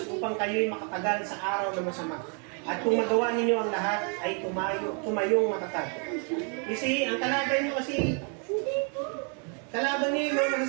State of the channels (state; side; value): quieter; left; 39.0 dB